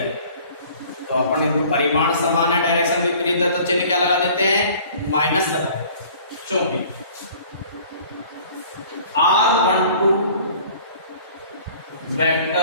तो अपन इनको परिमाण समान है, डायरेक्शन विपरीत है, तो चिन्ह क्या लगा देते हैं, माइनस लगा देते हैं। क्योंकि R12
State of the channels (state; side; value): inverted; both; correlation -0.50